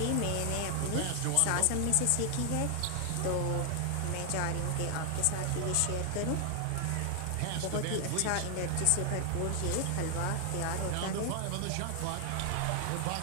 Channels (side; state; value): both; different; correlation 0.00